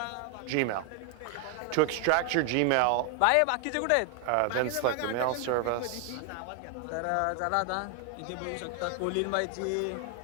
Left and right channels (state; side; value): different; both; correlation 0.00